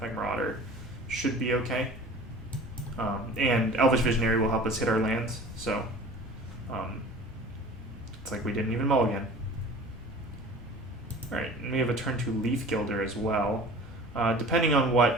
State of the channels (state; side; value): noise; right; hum, 25 dB below the sound